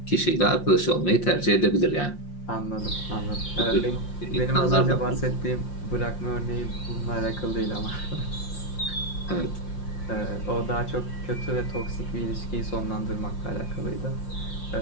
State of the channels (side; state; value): right; late; 5.7 ms